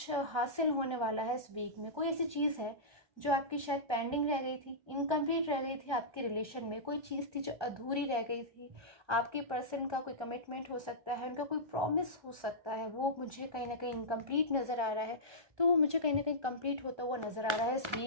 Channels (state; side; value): late; left; 1.3 ms